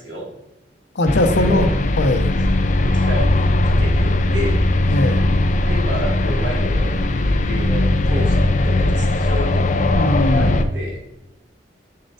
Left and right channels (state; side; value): normal; both; correlation 0.76